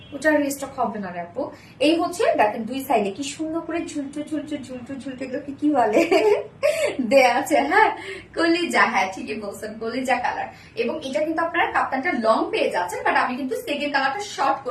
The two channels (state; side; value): identical; both; correlation 1.00